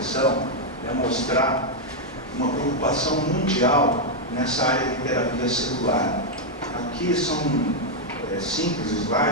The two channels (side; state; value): both; normal; correlation -0.01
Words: é mostrar uma preocupação mundial nessa área de terapia celular. Aqui são simples